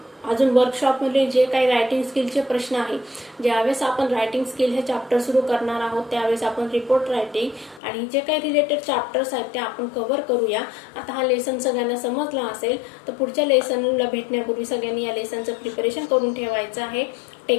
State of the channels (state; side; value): drops out; right; at 7.8 s